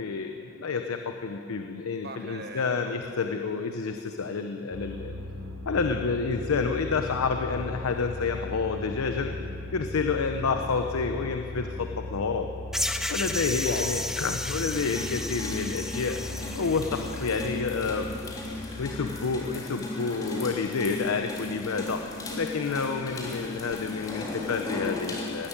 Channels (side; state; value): right; quieter; 3.8 dB